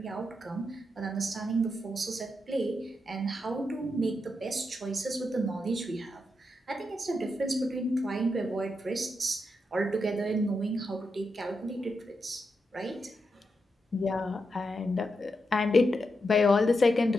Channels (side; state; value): both; normal; correlation 0.85